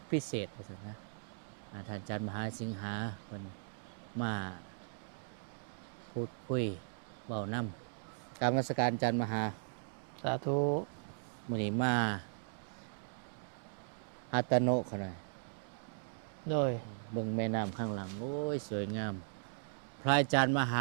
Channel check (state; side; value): silent; left; digital silence